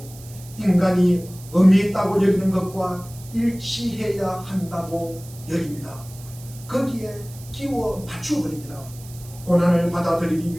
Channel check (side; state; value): right; noise; hiss, 19 dB below the sound